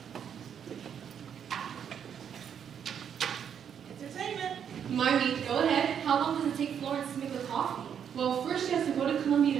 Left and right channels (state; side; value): quieter; left; 8.2 dB